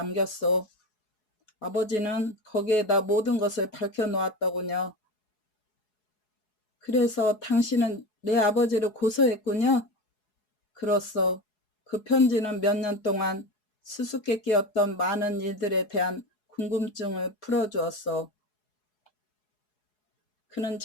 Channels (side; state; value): right; late; 4.7 ms